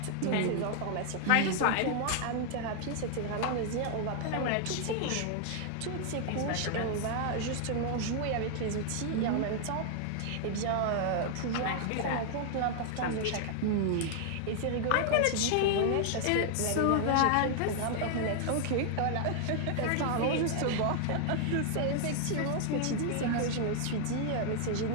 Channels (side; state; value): both; different; correlation 0.00